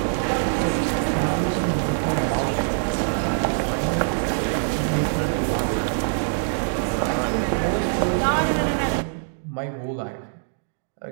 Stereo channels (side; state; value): left; silent; digital silence